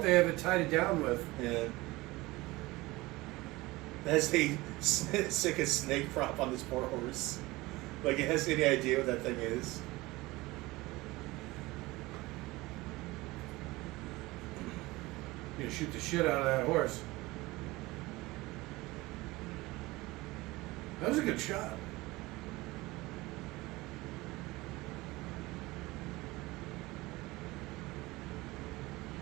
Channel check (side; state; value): left; quieter; 20.7 dB